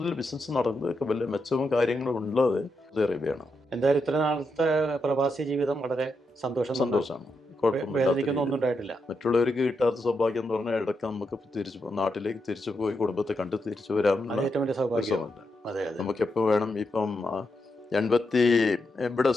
ബിസിനസ് നടന്നതൊക്കെ വലിയ മെച്ചവും കാര്യങ്ങളും ഉള്ളത് സൗദി അറേബ്യയാണ്. എന്തായാലും ഇത്ര നാളത്തെ പ്രവാസി ജീവിതം വളരെ സന്തോഷമാണ്. ഒന്നും ഉണ്ടായിട്ടില്ല. മറ്റുള്ളവർക്ക് കിട്ടാത്ത സൗഭാഗ്യം എന്ന് പറഞ്ഞാൽ ഇടയ്ക്ക് നമുക്ക് നാട്ടിലേക്ക് തിരിച്ചു പോയി കുടുംബത്തെ കണ്ട് തിരിച്ചു വരാൻ നമുക്ക് എപ്പോൾ വേണം. ഇപ്പം ഇവിടെ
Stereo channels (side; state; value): both; normal; correlation 0.84